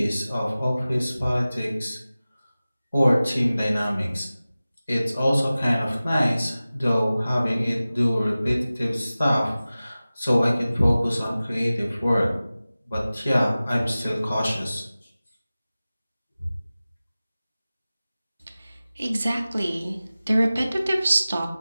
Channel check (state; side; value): inverted; both; correlation -0.97